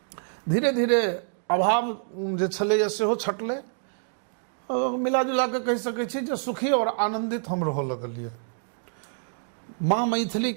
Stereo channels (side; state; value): left; silent; digital silence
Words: धीरे धीरे अभाव जे छलैया सेहो छटलै। मिला जुला के कहि सकै छी जे सुखी और आनंदित हम रह लगलिए। माँ मैथिली